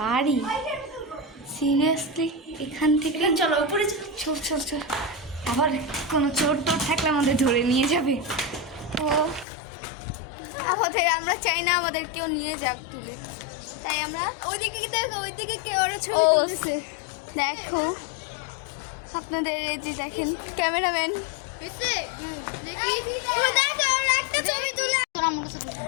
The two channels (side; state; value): right; drops out; at 9.5 s